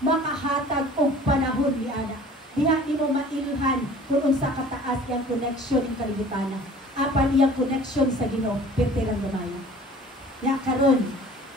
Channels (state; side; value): normal; both; correlation 0.47